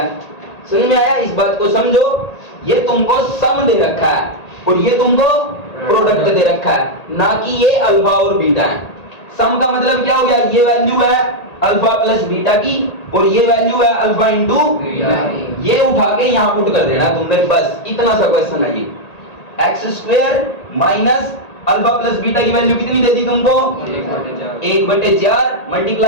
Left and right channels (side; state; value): right; late; 1.8 ms